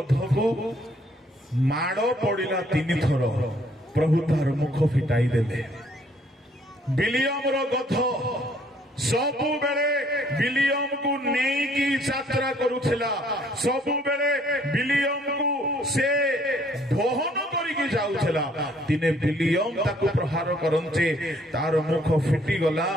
ମାଡ଼ ପଡ଼ିଲା 3 ଥର, ପ୍ରଭୁ ତାର ମୁଖ ଫିଟାଇ ଦେଲେ। ବିଲିୟମର ଗଧ ସବୁବେଳେ ବିଲିୟମକୁ ନେଇକି ଯାତ୍ରା କରୁଥିଲା। ସବୁବେଳେ ବିଲିୟମକୁ ସେ ବହନ କରିକି ଯାଉଥିଲା। ଦିନେ ବିଲିୟମ ତାକୁ ପ୍ରହାର କରନ୍ତେ ତାର ମୁଖ ଫିଟିଗଲା।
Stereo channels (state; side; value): normal; both; correlation 0.63